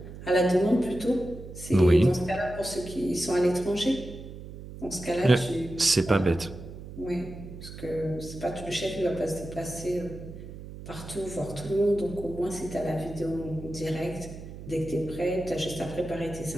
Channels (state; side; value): noise; right; hum, 13 dB below the sound